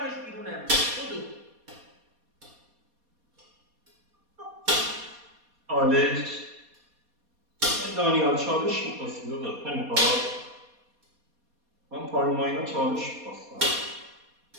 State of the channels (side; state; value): left; late; 4.2 ms